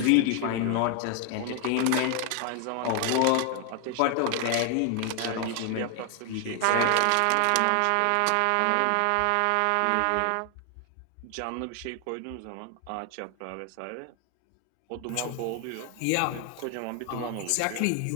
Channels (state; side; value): different; both; correlation 0.00